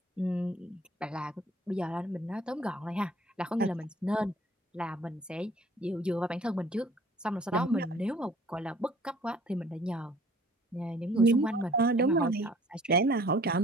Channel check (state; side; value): normal; both; correlation 0.53